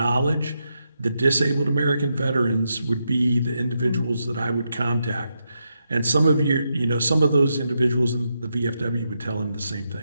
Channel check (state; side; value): inverted; both; correlation -0.84